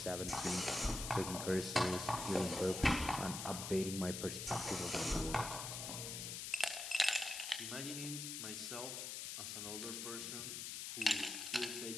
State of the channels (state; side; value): noise; left; hiss, 5 dB below the sound